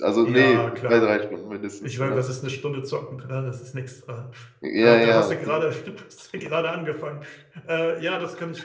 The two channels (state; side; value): identical; both; correlation 1.00